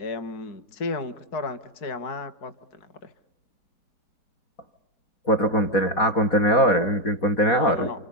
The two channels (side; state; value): right; late; 4.2 ms